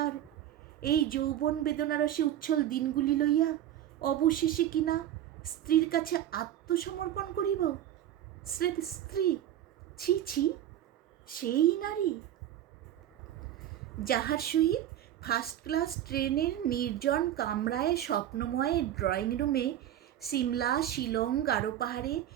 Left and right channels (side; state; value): left; quieter; 11.6 dB